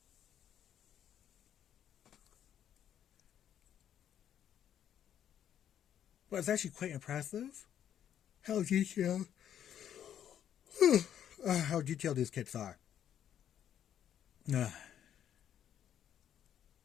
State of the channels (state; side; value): quieter; right; 9.9 dB